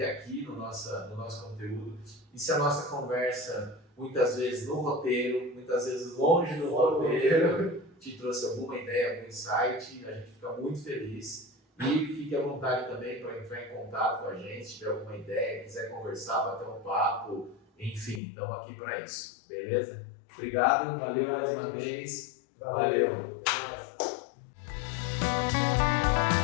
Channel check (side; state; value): right; drops out; at 18.2 s